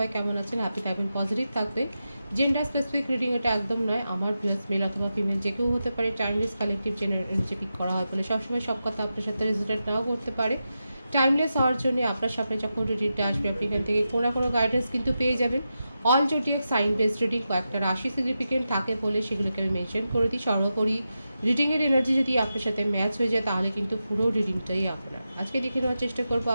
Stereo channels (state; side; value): inverted; both; correlation -0.89